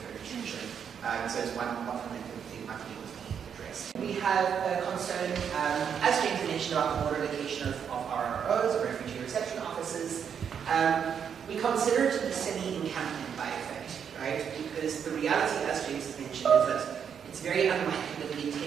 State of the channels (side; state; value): left; quieter; 7.7 dB